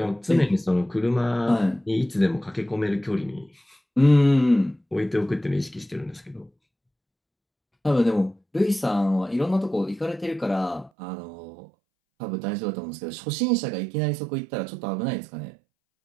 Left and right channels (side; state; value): left; drops out; at 10.9 s